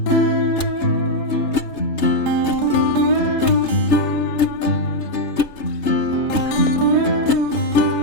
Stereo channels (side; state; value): right; late; 3.3 ms